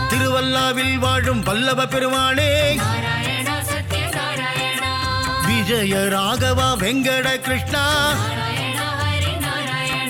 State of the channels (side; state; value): both; identical; correlation 1.00